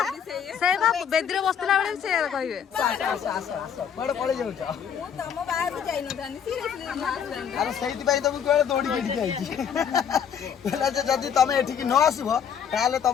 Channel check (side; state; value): right; quieter; 8.0 dB